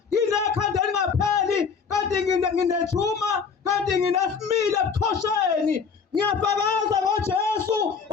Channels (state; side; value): quieter; right; 5.8 dB